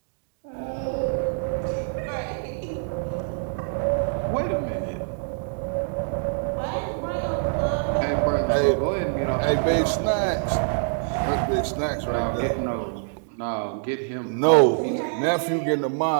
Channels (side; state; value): left; silent; digital silence